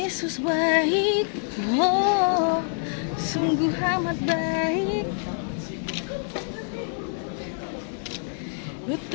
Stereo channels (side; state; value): right; silent; 61 dB below the other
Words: baik, oh sungguh amat baik.